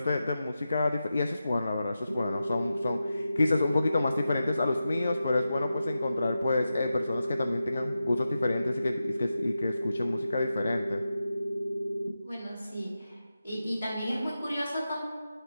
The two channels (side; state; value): both; inverted; correlation -0.91